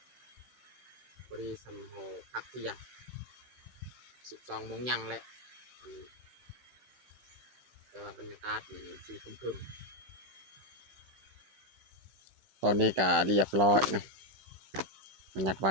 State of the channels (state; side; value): late; left; 16 ms